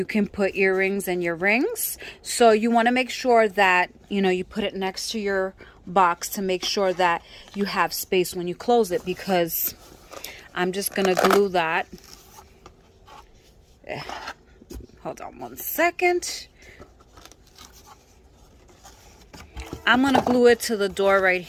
can put earrings and your rings. So you want to make sure that, you put it next to your box to make sure that you have space when you close it, because I'm just going to glue that. Hold on one second. I'm going to glue it to the door right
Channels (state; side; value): identical; both; correlation 1.00